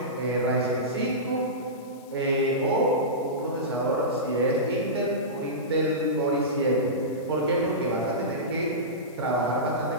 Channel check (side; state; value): left; noise; hiss, 26 dB below the sound